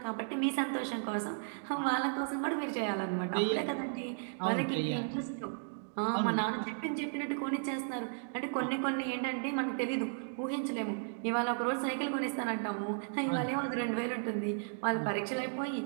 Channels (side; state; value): left; silent; digital silence